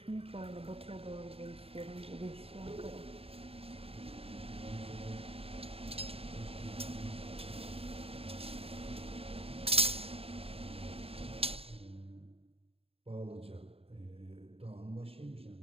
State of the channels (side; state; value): left; late; 0.28 ms